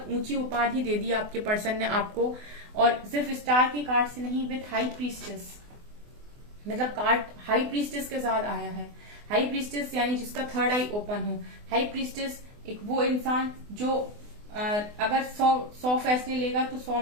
ऊंची उपाधि दे दी आपके पर्सन ने आपको, और सिर्फ स्टार के कार्ड से नहीं, विथ हाई प्रीस्टेस, मतलब कार्ड हाई प्रीस्टेस के साथ आया है। हाई प्रीस्टेस यानी जिसका थर्ड आई ओपन हो। हाई प्रीस्टेस एक वो इंसान जो अगर 100 फैसले लेगा तो 100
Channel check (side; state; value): left; late; 24 ms